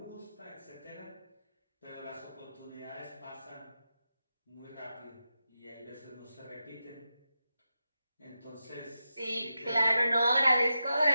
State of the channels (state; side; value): inverted; both; correlation -0.90